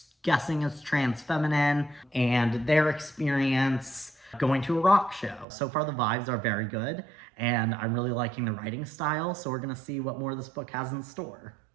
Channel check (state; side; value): drops out; left; at 5.5 s